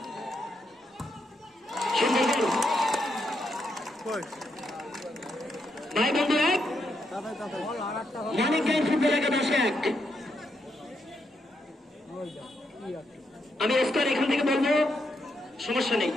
ভাই বন্ধু এক মানিক গাইন ফুটবল একাদশ এক। আমি স্কোর এখান থেকে বলবো, সমস্যা নেই।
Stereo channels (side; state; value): both; normal; correlation 0.80